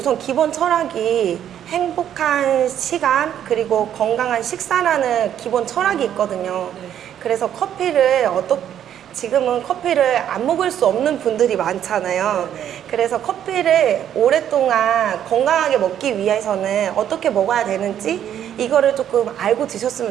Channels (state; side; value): quieter; left; 10.1 dB